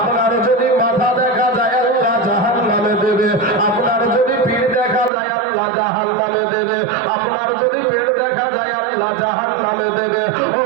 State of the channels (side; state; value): left; drops out; at 5.1 s